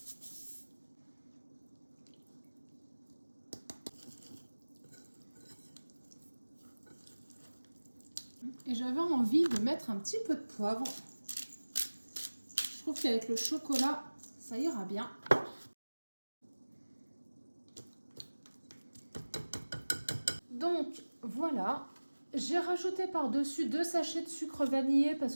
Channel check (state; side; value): inverted; both; correlation -1.00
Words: Et j'avais envie de mettre un petit peu de poivre. Je trouve qu'avec le chocolat, ça ira bien. Donc voilà, j'ai rajouté par-dessus 2 sachets de sucre vanillé parce